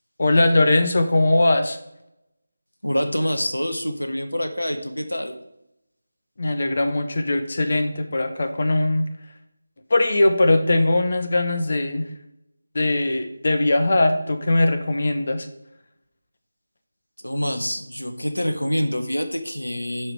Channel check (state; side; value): inverted; both; correlation -0.97